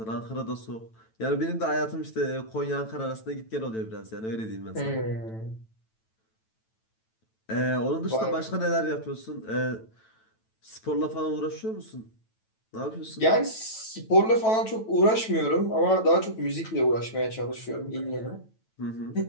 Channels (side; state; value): right; late; 9.1 ms